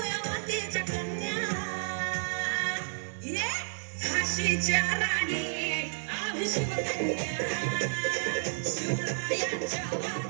मातेच्या कन्या ये झाशीच्या राणी आम्ही शिवकन्या शिवरायांच्या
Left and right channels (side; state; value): left; silent; digital silence